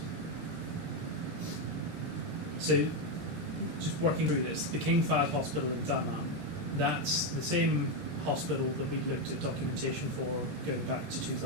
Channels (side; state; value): left; late; 21 ms